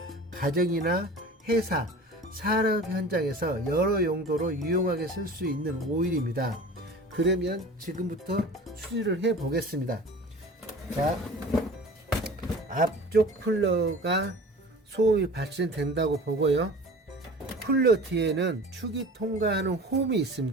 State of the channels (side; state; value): both; normal; correlation 0.40